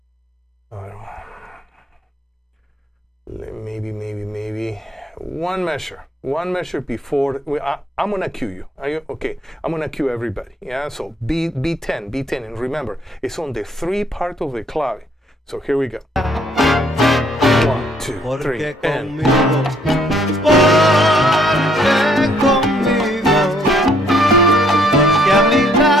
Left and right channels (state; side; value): normal; both; correlation 0.66